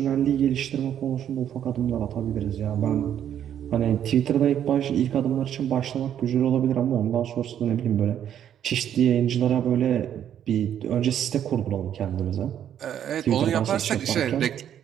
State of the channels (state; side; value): quieter; left; 9.9 dB